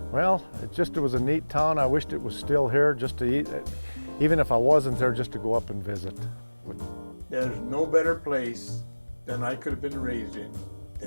Well, it was a neat town. I wished it was still here just to eat, even if I wasn't there, just to go up and visit. There's no better place than I could have been raised in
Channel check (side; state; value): both; inverted; correlation -1.00